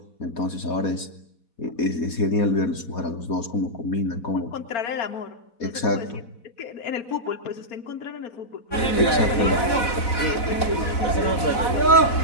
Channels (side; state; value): right; late; 4.0 ms